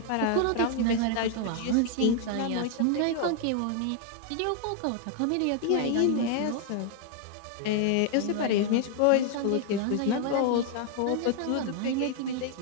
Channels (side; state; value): both; different; correlation 0.00